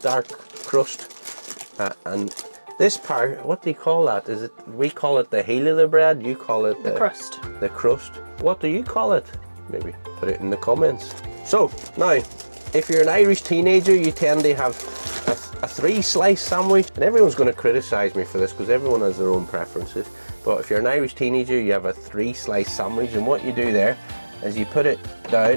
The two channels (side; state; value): both; inverted; correlation -1.00